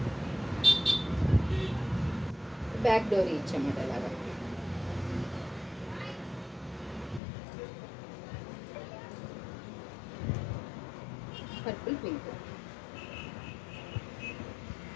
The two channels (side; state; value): right; drops out; at 7.2 s